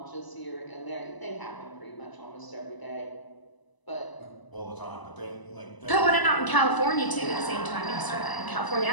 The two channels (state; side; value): late; right; 1.0 ms